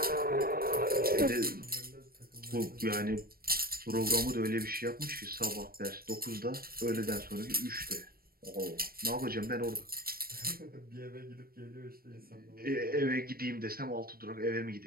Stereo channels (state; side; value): late; left; 0.44 ms